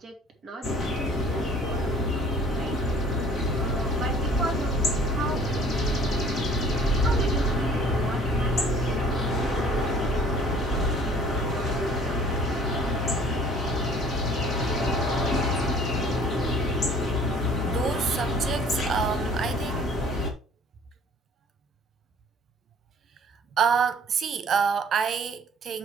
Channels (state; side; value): normal; both; correlation 0.52